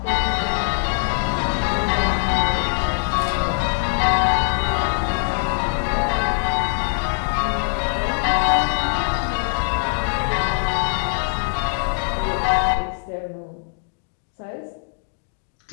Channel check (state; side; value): silent; right; digital silence